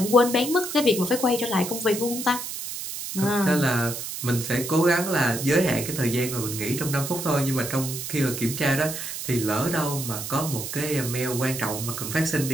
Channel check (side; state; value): right; noise; hiss, 6 dB below the sound